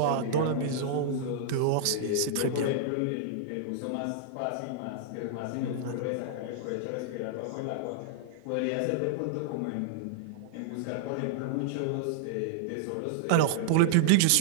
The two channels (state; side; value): different; both; correlation -0.01